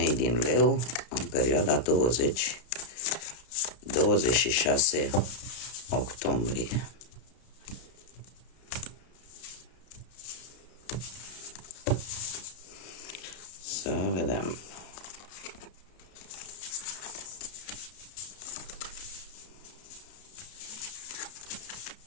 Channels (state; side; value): late; right; 32 ms